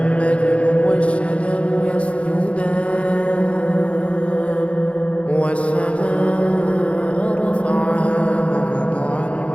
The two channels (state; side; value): late; right; 0.062 ms